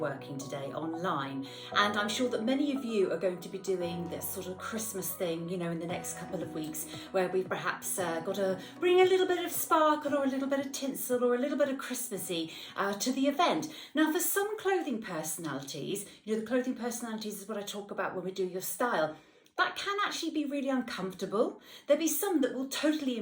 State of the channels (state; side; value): identical; both; correlation 1.00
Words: today online, and I'm sure that many of you are going to be doing this sort of Christmas thing, in the next couple of weeks, where we've perhaps got to bring a little bit of sparkle or a little bit of tinsel or a little bit of Christmassy to the event. Now, for some clothing personalities, the clothing personalities is what I talk about when we do your style. That can actually be really uncomfortable. There'll be some that will totally